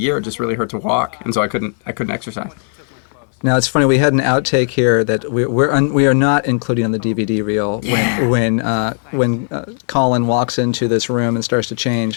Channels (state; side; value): silent; right; 58 dB below the other